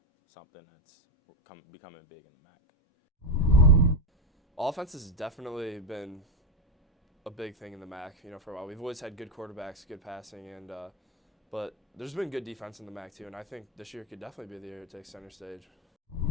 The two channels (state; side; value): normal; both; correlation 0.09